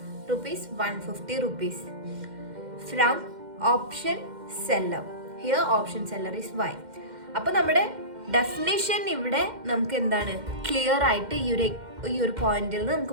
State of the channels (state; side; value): late; left; 2.1 ms